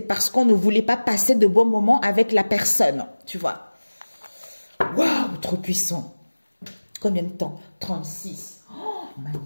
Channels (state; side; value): inverted; both; correlation -1.00